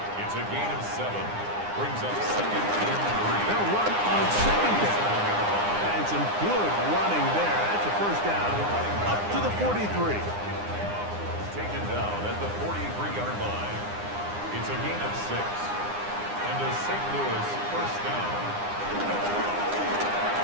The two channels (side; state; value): left; late; 9.8 ms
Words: It's a gain of 7. Brings up 2nd and 3. They'll run on 2nd down. And some good running there. That's a 1st down up to the 43. Taken down at the 43-yard line. It's a gain of 6. And a St. Louis 1st down.